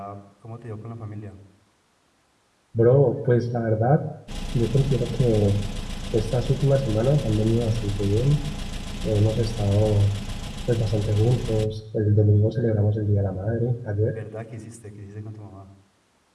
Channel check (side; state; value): both; identical; correlation 1.00